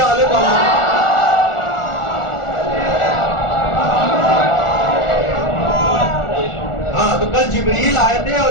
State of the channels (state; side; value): late; right; 1.4 ms